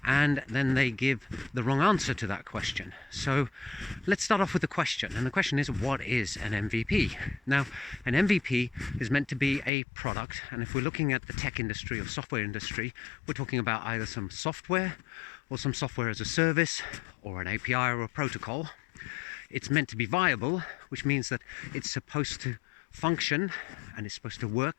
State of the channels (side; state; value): right; drops out; at 9.7 s